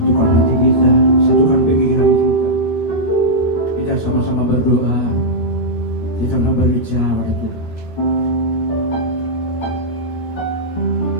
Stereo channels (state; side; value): late; right; 13 ms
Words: hati kita, satukan pikiran kita. Kita sama-sama berdoa, kita berbicara pada Tuhan.